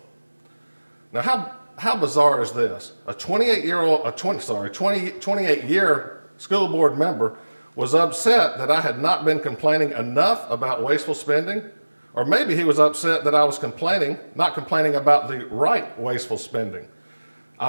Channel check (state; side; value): inverted; both; correlation -1.00